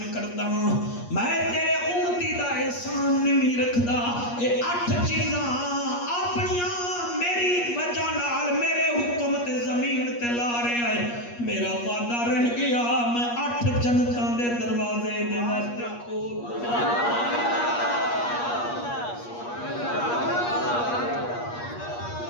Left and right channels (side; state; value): right; late; 8.4 ms